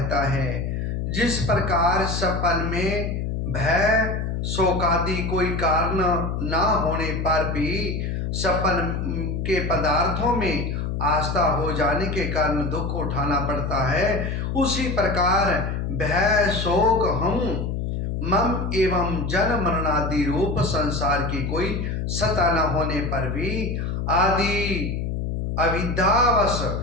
है। जिस प्रकार सपन में भय शोकादि कोई कारण ना होने पर भी सपन के पदार्थों में आस्था हो जाने के कारण दुख उठाना पड़ता है, उसी प्रकार भय शोक हम मम एवं जन्म मरणादि रूप संसार की कोई सत्ता न होने पर भी आदि अविद्यावश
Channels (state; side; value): noise; left; hum, 2 dB below the sound